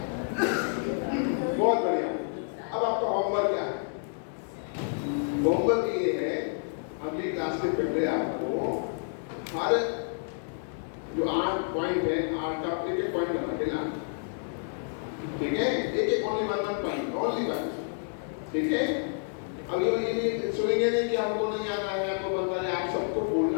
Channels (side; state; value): right; silent; digital silence